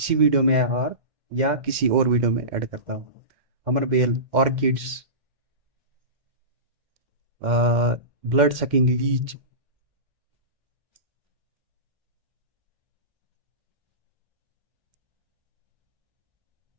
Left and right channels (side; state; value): left; late; 2.1 ms